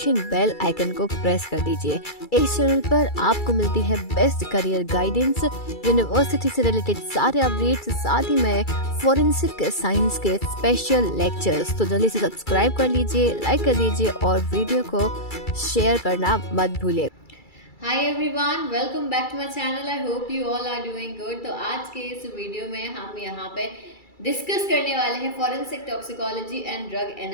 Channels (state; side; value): late; right; 2.3 ms